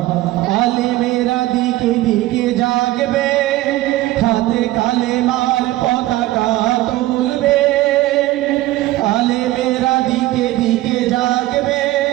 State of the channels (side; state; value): left; quieter; 16.8 dB